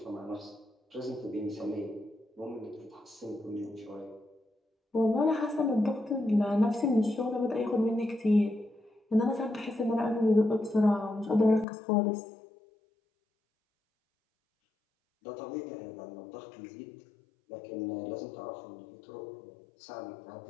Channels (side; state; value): right; drops out; at 11.7 s